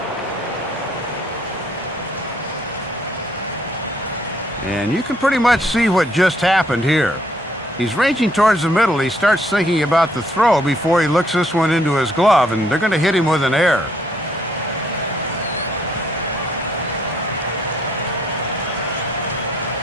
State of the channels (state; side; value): normal; both; correlation 0.68